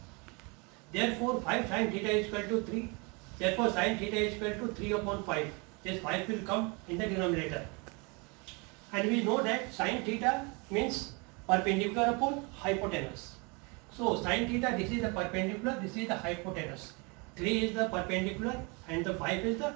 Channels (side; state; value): left; quieter; 30.3 dB